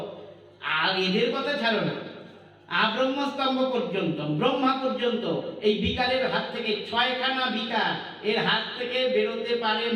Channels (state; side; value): identical; both; correlation 1.00